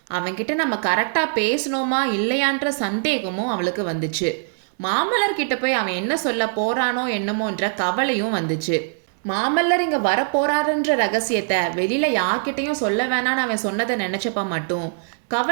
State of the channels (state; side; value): silent; left; digital silence